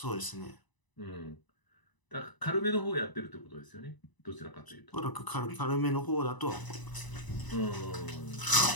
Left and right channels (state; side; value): late; right; 1.0 ms